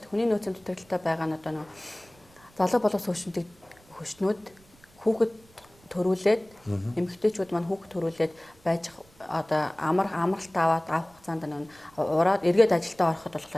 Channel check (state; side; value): noise; right; rumble, 28 dB below the sound